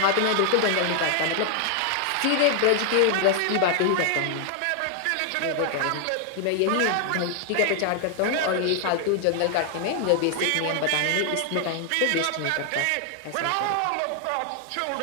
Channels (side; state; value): both; different; correlation 0.00